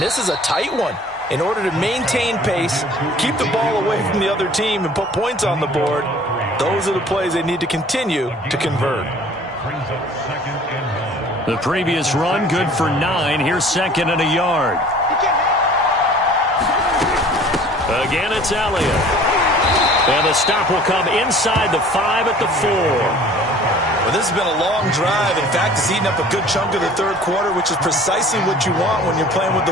this is a tight one. In order to maintain pace, keep the ball away from the other team, and put points on the board, those are the plays they need to continue to convert. The previous run, good for 9. Here's 2nd and a yard. Again, it's Elliott. And the stop will come inside the 5 at the 4. Well, this has been a long drive. In fact, it's eaten up a good chunk of the 3rd quarter, which is precisely what you want when you're playing with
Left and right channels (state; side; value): normal; both; correlation 0.49